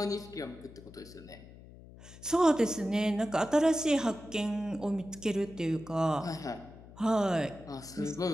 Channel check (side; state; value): left; noise; hum, 19 dB below the sound